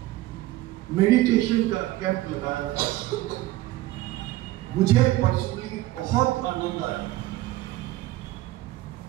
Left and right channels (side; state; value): left; quieter; 16.8 dB